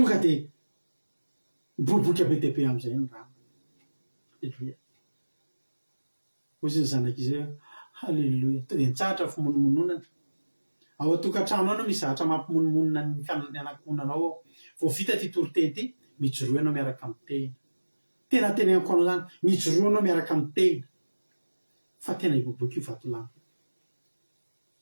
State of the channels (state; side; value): inverted; both; correlation -1.00